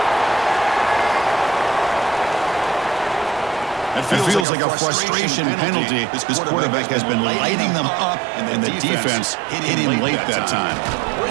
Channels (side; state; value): left; drops out; at 4.5 s